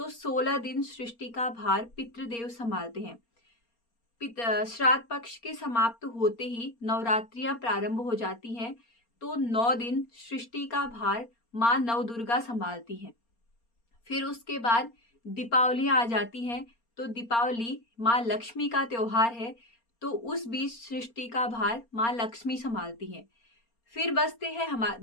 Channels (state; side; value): late; right; 4.3 ms